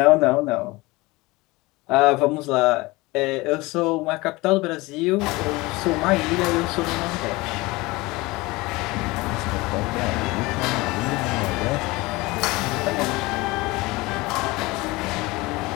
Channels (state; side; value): quieter; right; 22.1 dB